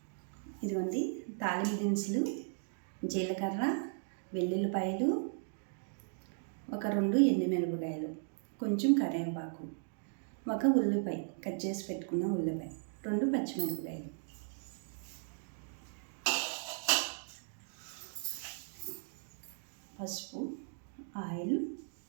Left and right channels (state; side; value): silent; left; digital silence